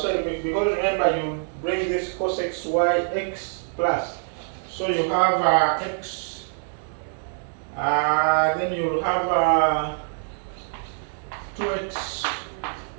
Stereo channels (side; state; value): left; silent; digital silence